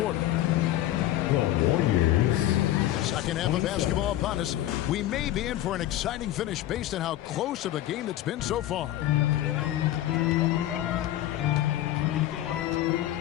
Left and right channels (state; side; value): quieter; right; 13.7 dB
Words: The Warriors. Second half of basketball upon us. We may be in for an exciting finish based on how close of a game it's been so far.